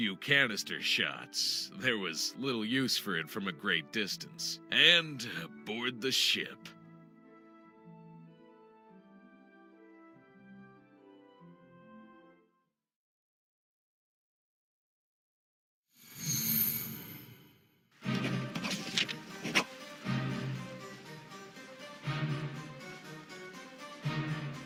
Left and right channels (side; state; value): both; identical; correlation 1.00